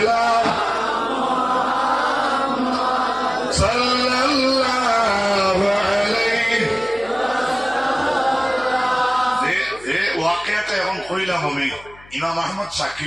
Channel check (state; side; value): noise; left; hum, 24 dB below the sound